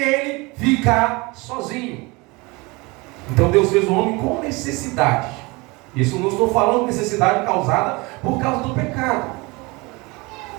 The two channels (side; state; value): left; quieter; 25.2 dB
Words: ficar sozinho. Então Deus fez o homem com necessidade. Isso não estou falando de necessidade causada por causa do pecado.